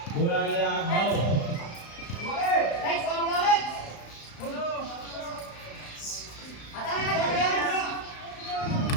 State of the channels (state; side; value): late; right; 35 ms